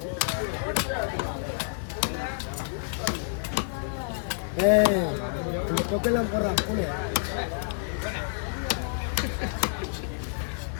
இந்த தொக்கையெல்லாம் போடுறான் கூட.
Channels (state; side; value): silent; right; 59 dB below the other